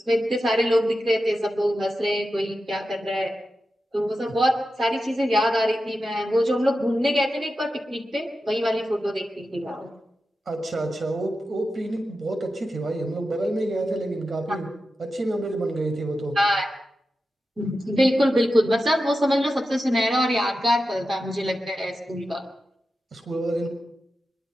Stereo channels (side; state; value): both; normal; correlation 0.91